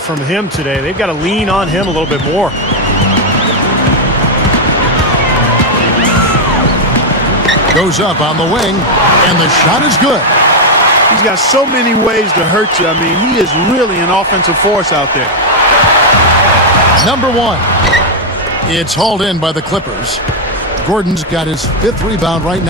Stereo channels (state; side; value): normal; both; correlation 0.01